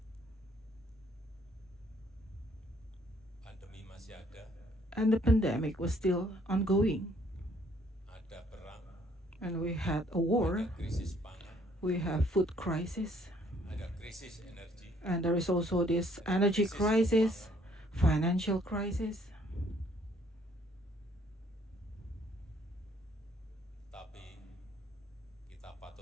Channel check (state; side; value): normal; both; correlation 0.64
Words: Pandemi masih ada, and the pandemic was still ongoing. ada perang, And we had a war, ada krisis pangan, we have food crisis, ada krisis energi, and there is also this energy crisis, financial crisis. tapi kita